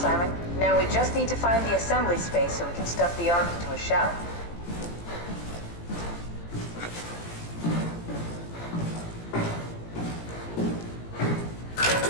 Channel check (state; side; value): late; right; 17 ms